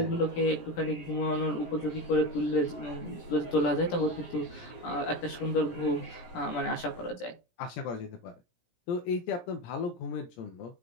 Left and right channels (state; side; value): late; right; 17 ms